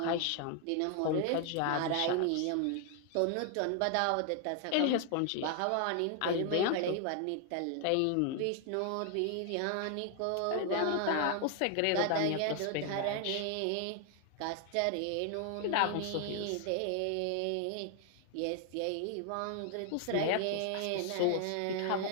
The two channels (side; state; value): both; different; correlation 0.00